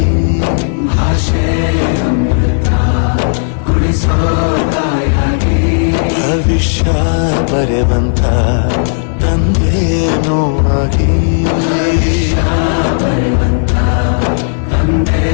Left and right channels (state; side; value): silent; right; digital silence